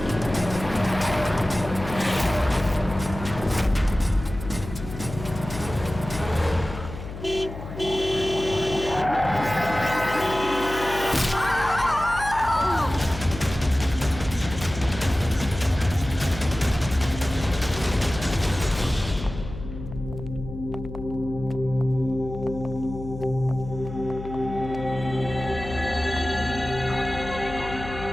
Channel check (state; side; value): noise; left; hum, 11 dB below the sound